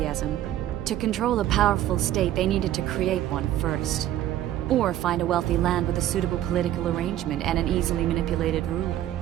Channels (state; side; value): quieter; left; 12.7 dB